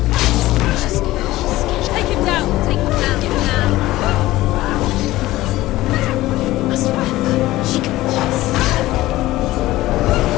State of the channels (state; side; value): quieter; right; 17.0 dB